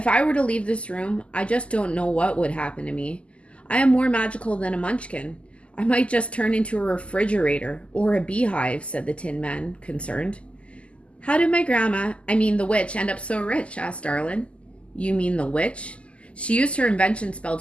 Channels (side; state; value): right; late; 0.057 ms